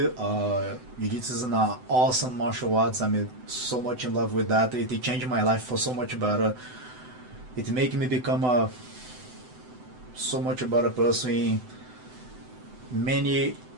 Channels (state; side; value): late; left; 7.9 ms